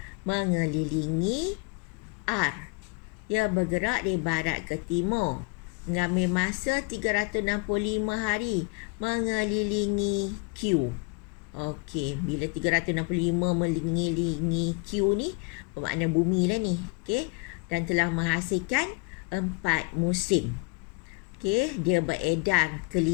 mengelilingi R. Ia bergerak dari barat ke timur. Mengambil masa 365 hari mengelilingi Q. Okey, bila 365 mengelilingi Q ni, bermakna bumi lah ni. Okey, dan telah menghasilkan 4 musim. Okey, dia beredar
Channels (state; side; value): quieter; right; 31.3 dB